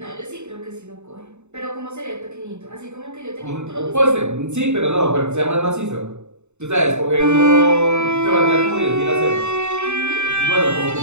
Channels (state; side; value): late; left; 0.82 ms